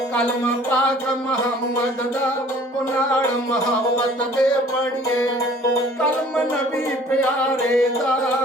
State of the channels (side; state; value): both; normal; correlation 0.52